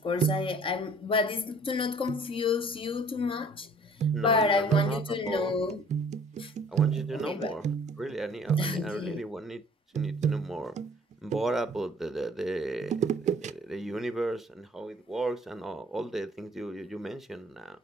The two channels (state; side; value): normal; both; correlation 0.54